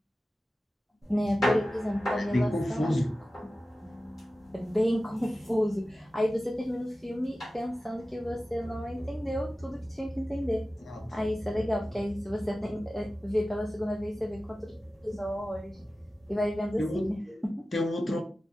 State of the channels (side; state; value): both; normal; correlation 0.95